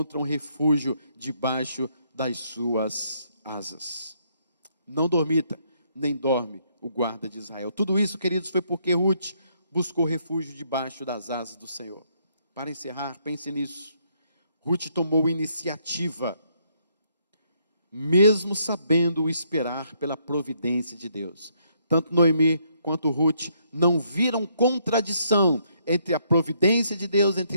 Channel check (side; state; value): both; inverted; correlation -0.72